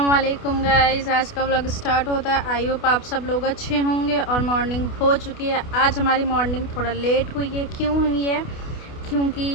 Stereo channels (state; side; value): late; right; 28 ms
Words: वालेकुम गाइस, आज का व्लॉग स्टार्ट होता है। आई होप आप सब लोग अच्छे होंगे और मॉर्निंग हो चुकी है। आज हमारी मॉर्निंग थोड़ा लेट हुई है। क्यों हुई है?